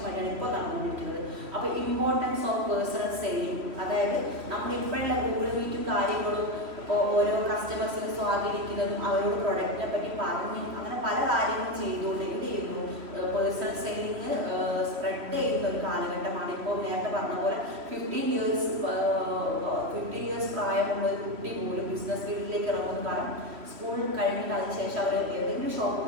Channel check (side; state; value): left; late; 3.1 ms